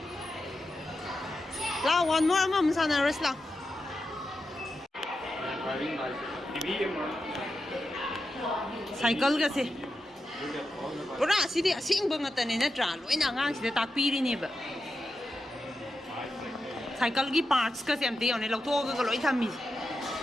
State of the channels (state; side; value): normal; both; correlation 0.89